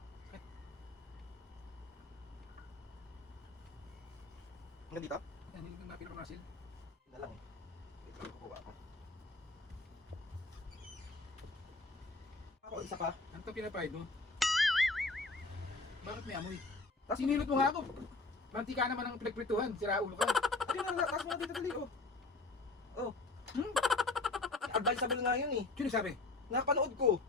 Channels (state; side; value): quieter; right; 3.4 dB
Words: Hanggang dito? Yan, hindi na pinakamasil. Yun na lang eh. Wait lang, kukuha ako. Ako, isa pa. Ano ito pinapahid mo? Bakit may amoy? Tapos Sinilot mo nga ako. Mantika naman ang pinagprituhan. Sira ulo ka. ayun na, taas mo na dito dali, oh. Oh, Hmm? advisable nga yun eh. Sino sabi? Napanood ko.